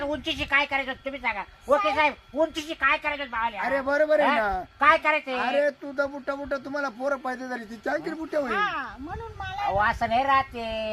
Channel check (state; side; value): identical; both; correlation 1.00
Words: उंचीची काय करायचं तुम्ही सांगा. ओके साहेब उंचीची काय करायचं भावले. अरे बरोबर आहे ना. काय करायचं. अरे तू तर बुट्टा बुट्टा तुम्हाला पोरं पाहिजे झाली ती चांगली बुट्ट्या होईल. हा म्हणून मला अहो असं नाही राहते